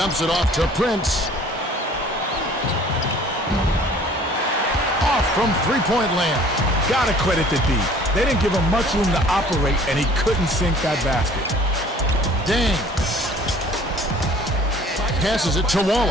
it off to Prince. Off from three-point land. Gotta credit the D. They didn't give him much room to operate, and he couldn't sink that basket. Dang. Passes it to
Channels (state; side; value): normal; both; correlation 0.52